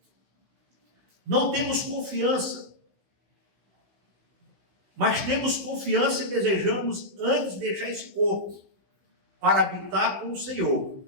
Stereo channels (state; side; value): late; left; 16 ms